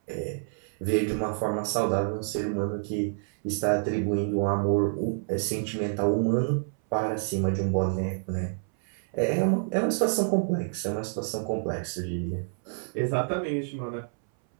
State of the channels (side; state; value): left; silent; 59 dB below the other